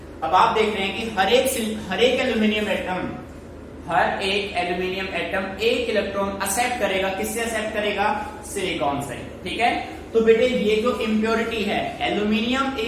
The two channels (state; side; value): identical; both; correlation 1.00